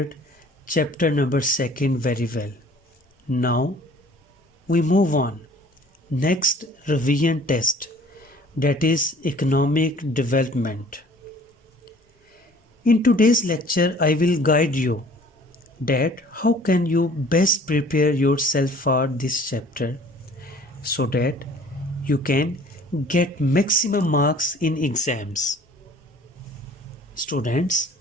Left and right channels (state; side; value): normal; both; correlation 0.51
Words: chapter number 2 very well. Now, we move on. Next revision test, that is economic development. In today's lecture, I will guide you that how can you best prepare yourself for this chapter so that you can get maximum marks in exams. Students,